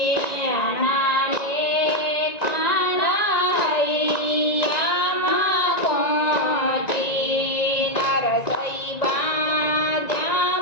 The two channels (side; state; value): right; late; 1.9 ms